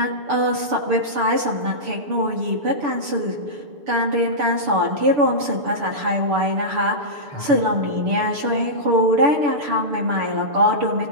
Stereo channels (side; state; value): left; late; 6.9 ms